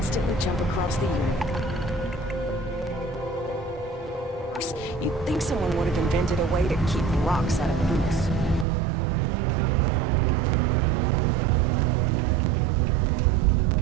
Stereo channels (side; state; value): left; drops out; at 8.7 s